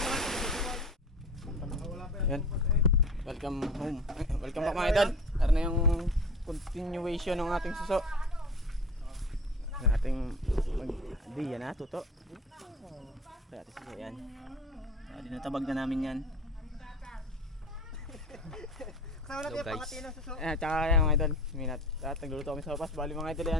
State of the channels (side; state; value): both; normal; correlation 0.37